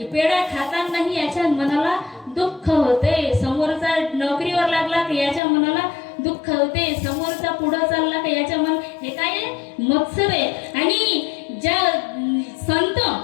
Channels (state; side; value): drops out; right; at 5.4 s